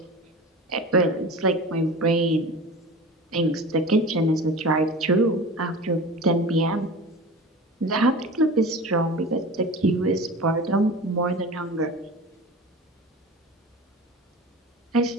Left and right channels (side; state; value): both; normal; correlation 0.34